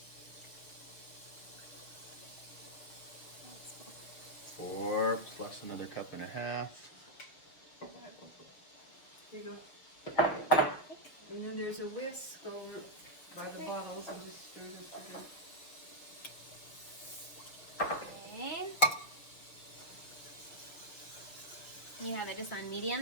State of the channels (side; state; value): right; late; 6.3 ms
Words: four plus another cup and a half. Here you go. And then there's a whisk over by the bottles and just stir it up. Okay. You have it just on